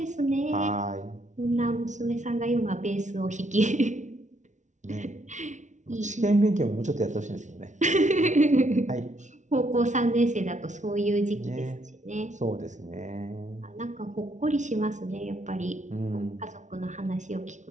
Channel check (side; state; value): left; late; 0.36 ms